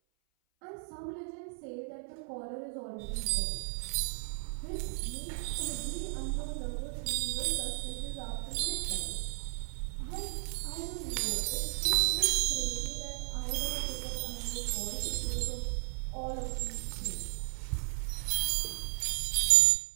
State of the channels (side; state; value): left; silent; 55 dB below the other